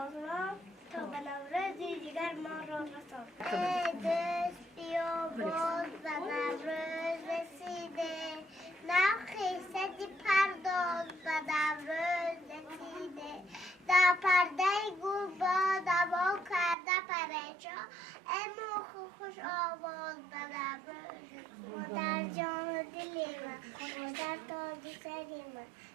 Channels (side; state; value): left; drops out; at 16.8 s